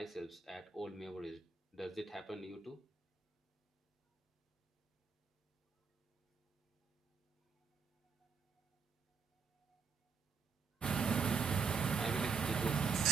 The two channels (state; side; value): quieter; left; 5.3 dB